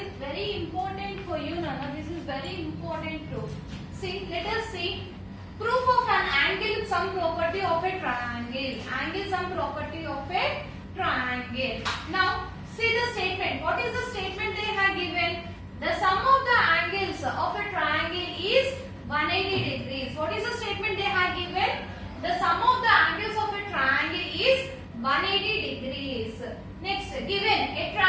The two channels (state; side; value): identical; both; correlation 1.00